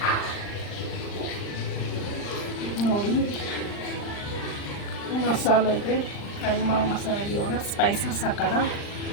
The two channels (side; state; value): right; late; 39 ms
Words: ನೋಡಿ, ಮಸಾಲೆಗೆ ಕೈಮಾ ಮಸಾಲೆಗೆ ಇವಾಗ ಸ್ಪೈಸಸ್ ಹಾಕೋಣ.